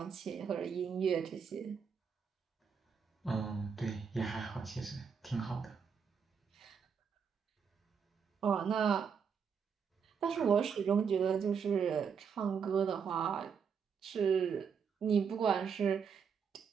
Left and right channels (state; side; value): quieter; left; 6.5 dB